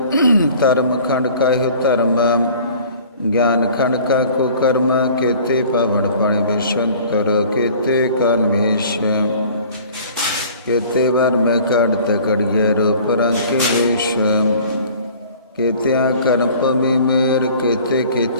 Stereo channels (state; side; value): inverted; both; correlation -0.49